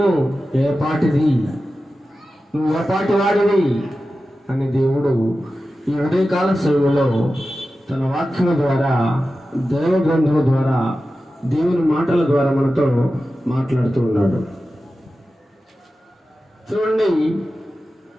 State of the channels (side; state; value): both; normal; correlation 0.93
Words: ఏపాటిది? నువ్వు ఏపాటి వాడివి అని దేవుడు ఈ ఉదయకాల సమయంలో తన వాక్యము ద్వారా, దైవ గ్రంథము ద్వారా, దేవుని మాటల ద్వారా మనతో మాట్లాడుతూ ఉన్నాడు. చూడండి,